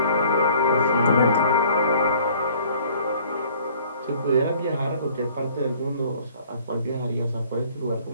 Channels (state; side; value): inverted; both; correlation -0.54